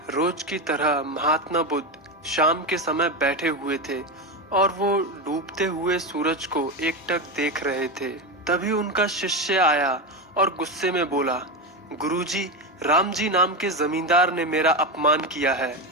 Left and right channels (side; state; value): both; normal; correlation 0.15